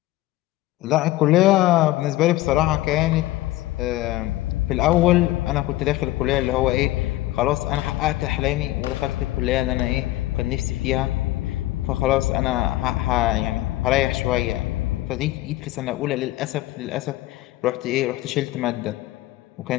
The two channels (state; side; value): quieter; right; 16.8 dB